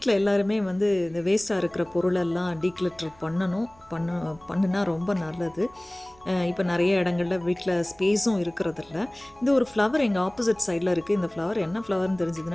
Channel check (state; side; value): noise; right; hum, 28 dB below the sound